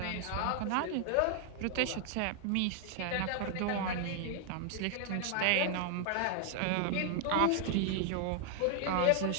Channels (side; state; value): both; different; correlation 0.00